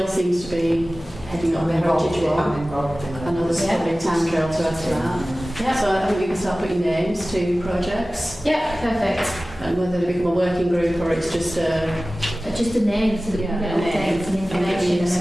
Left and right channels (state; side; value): normal; both; correlation 0.97